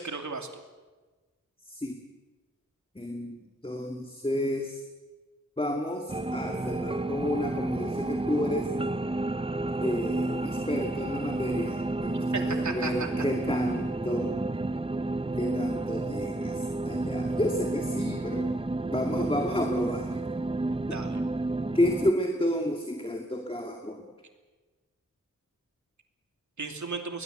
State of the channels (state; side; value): normal; both; correlation 0.72